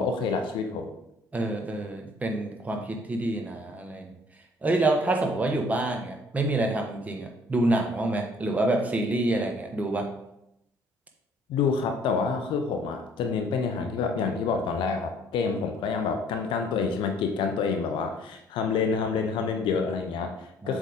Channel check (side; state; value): both; normal; correlation 0.58